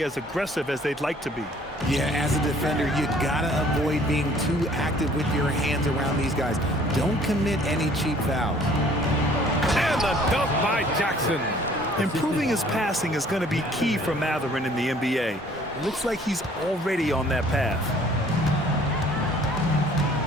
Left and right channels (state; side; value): normal; both; correlation 0.56